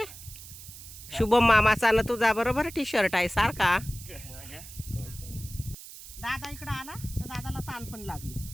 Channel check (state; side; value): noise; right; hiss, 15 dB below the sound